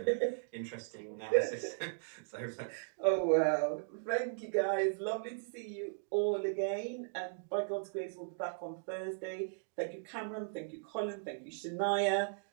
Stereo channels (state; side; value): silent; left; digital silence